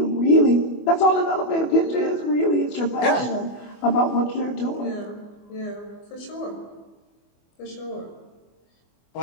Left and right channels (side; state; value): right; late; 24 ms